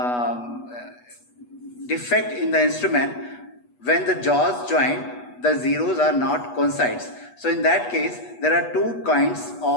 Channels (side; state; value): right; late; 8.2 ms